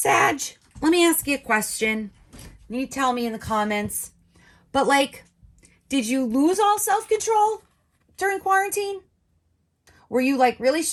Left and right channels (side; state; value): both; identical; correlation 1.00